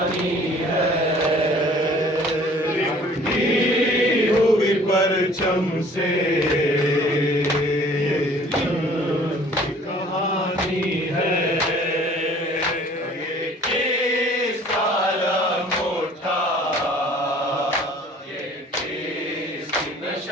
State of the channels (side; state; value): both; normal; correlation 0.52